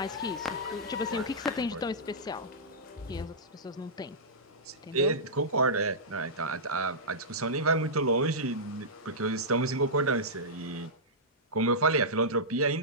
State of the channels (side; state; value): both; normal; correlation -0.14